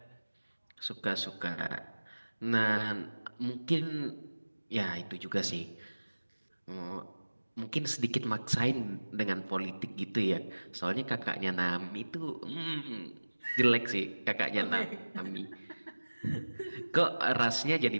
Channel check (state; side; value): inverted; both; correlation -1.00